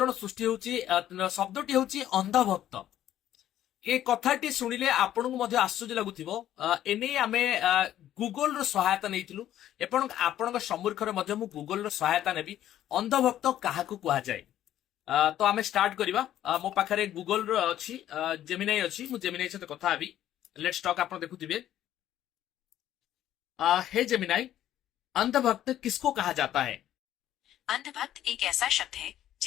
सृष्टि होची शब्दटी होची अंधभक्त। ए कथाटी शुणिले आपन को मध्य आश्चर्य लगुथिबो। एने आमे गूगल रो सहायता नैथिलु एपन आपन सम्मुखरे मध्य मु गूगल रो सहायता नेबी। अंधभक्त काहाकू कुहा जाय तो आमे स्टार्ट करिबा। मो पाखरे गूगल रो अछि, जेमिनाई अछि, मु जेमिनाई सहित कथा हेबी। Let's talk. आपन देखुथिबे। हे जेमिनाई, अंधभक्त किसको कहा जाता है? अंधभक्त एक ऐसा शब्द है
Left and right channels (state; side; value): quieter; right; 12.1 dB